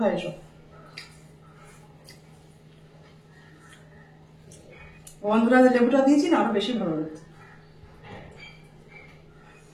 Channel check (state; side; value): identical; both; correlation 1.00